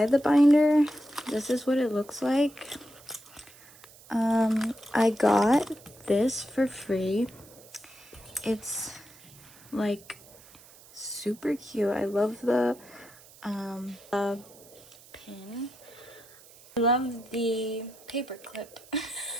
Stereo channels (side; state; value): right; noise; hiss, 23 dB below the sound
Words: the binder, this is what it looks like. I got this for free. It's like super cute. I love the pin. I love the paper clip.